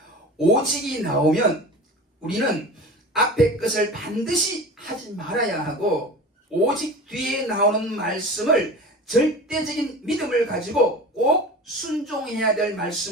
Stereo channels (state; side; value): normal; both; correlation 0.35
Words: 오직이 나오면 우리는 앞에 것을 반드시 하지 말아야 하고 오직 뒤에 나오는 말씀을 절대적인 믿음을 가지고 꼭 순종해야 될